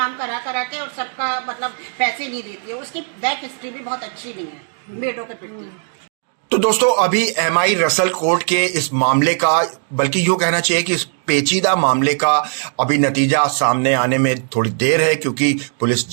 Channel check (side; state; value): left; silent; digital silence